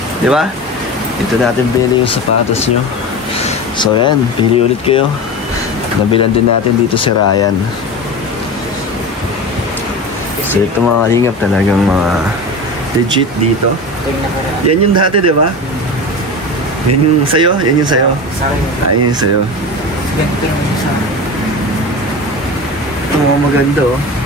Di ba? Dito natin bili yung sapatos nyo. So yan, pili ulit kayo. Nabilan din natin dito si Ryan. So ito mga kalingap, talagang mga legit dito. Yan yung dati, di ba? Yan yung sayo? Yan yung sayo? Sa akin. Yan yung sayo. Ganito lang yung sa akin. maganda oh.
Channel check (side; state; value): both; normal; correlation 0.28